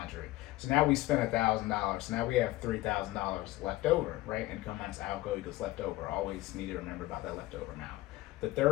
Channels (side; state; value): right; quieter; 17.8 dB